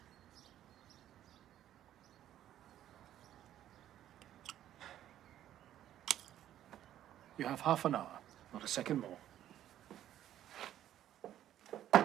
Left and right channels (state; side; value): quieter; left; 11.8 dB